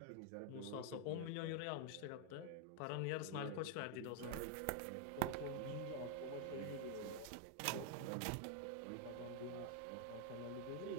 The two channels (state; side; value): different; both; correlation 0.00